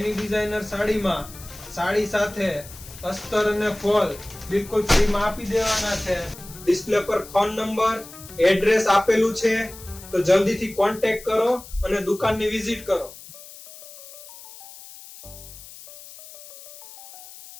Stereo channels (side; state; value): left; noise; hiss, 17 dB below the sound